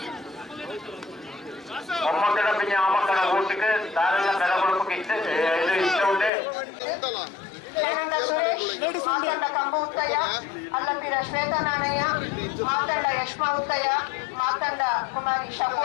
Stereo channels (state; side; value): drops out; right; at 6.3 s